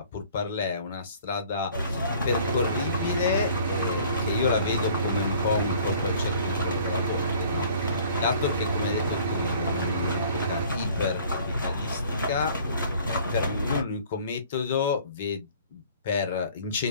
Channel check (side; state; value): both; inverted; correlation -0.53